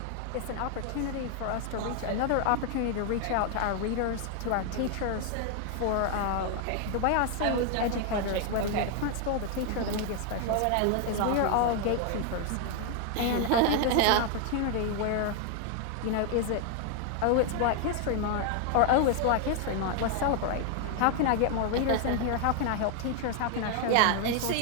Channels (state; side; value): different; both; correlation 0.00